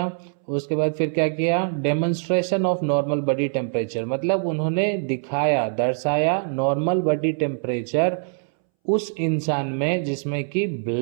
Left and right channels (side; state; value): left; silent; 63 dB below the other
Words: उसके बाद फिर क्या किया? Demonstration of normal body temperature, मतलब उन्होंने दिखाया, दर्शाया नॉर्मल बॉडी टेम्परेचर उस इंसान में जिसमें कि